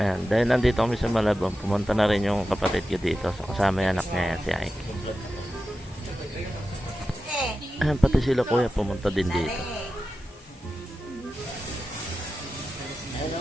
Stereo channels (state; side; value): normal; both; correlation 0.92